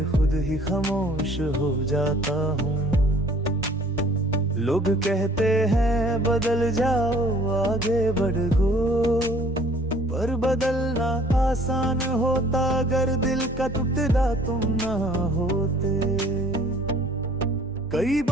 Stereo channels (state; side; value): normal; both; correlation 0.55